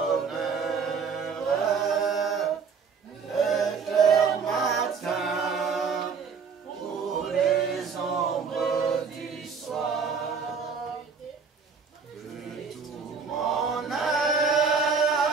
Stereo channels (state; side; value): quieter; left; 5.6 dB